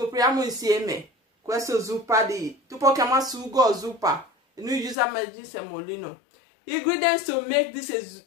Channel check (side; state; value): right; drops out; at 5.0 s